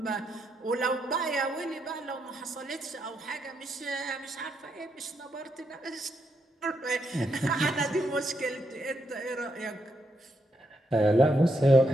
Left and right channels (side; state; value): both; normal; correlation 0.80